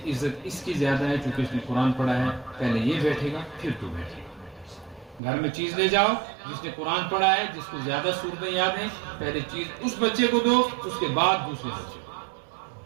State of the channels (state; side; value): drops out; left; at 5.2 s